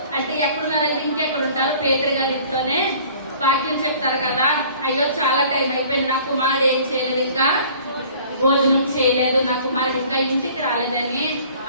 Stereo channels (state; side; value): inverted; both; correlation -0.51